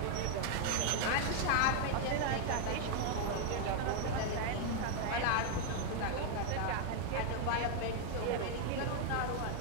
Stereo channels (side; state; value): both; different; correlation 0.01